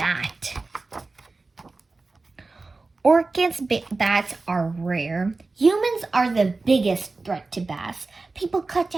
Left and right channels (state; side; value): quieter; left; 3.6 dB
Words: Orchids bats are rare. Humans are the biggest threat to bats. People cut